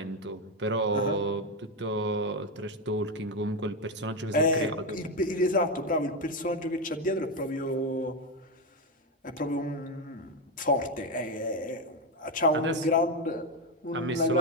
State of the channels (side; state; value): both; normal; correlation 0.09